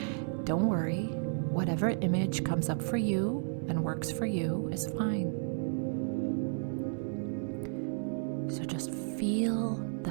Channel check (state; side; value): silent; left; digital silence